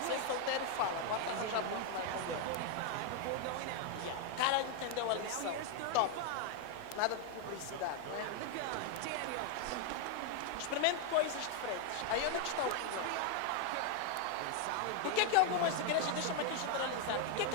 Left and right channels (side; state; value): both; different; correlation 0.00